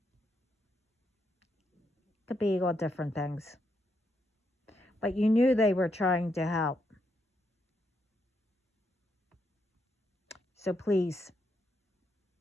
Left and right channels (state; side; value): normal; both; correlation 0.79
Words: be all different things. But you knew they were trying to help. So please,